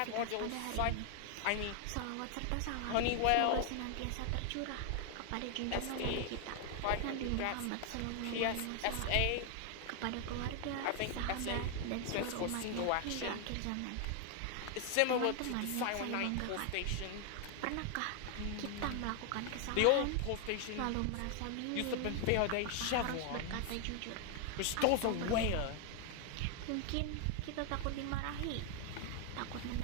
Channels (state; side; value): different; both; correlation 0.00